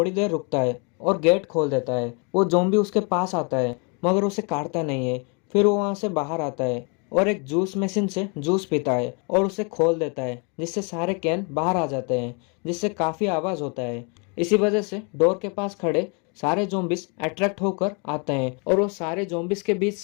देर रुकता है और गेट खोल देता है। वो ज़ॉम्बी उसके पास आता है, मगर उसे काटता नहीं है। फिर वो वहाँ से बाहर आता है और एक जूस मशीन से जूस पीता है और उसे खोल देता है, जिससे सारे कैन बाहर आ जाते हैं, जिससे काफ़ी आवाज़ होता है। इसी वजह से डोर के पास खड़े सारे ज़ॉम्बीज अट्रैक्ट होकर आते हैं और वो सारे ज़ॉम्बीज के बीच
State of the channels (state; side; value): quieter; right; 34.4 dB